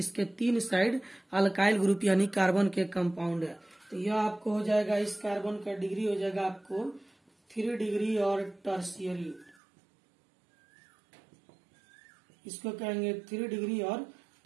3 साइड अल्काइल ग्रुप यानी कार्बन के कंपाउंड है। तो यह आपको हो जाएगा, इस कार्बन का डिग्री हो जाएगा आपको 3 डिग्री और टर्शियरी, इसको कहेंगे 3 डिग्री और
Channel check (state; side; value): drops out; left; at 9.6 s